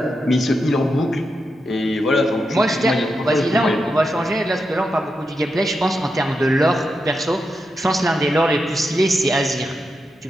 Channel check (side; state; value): both; normal; correlation 0.87